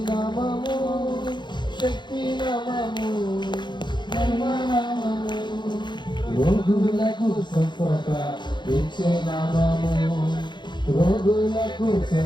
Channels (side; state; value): right; late; 0.22 ms